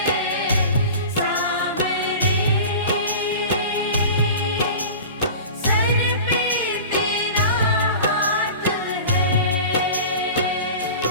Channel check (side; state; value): both; inverted; correlation -0.36